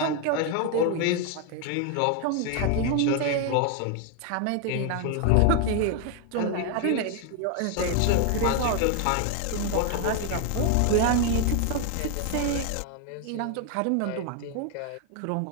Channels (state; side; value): different; both; correlation 0.01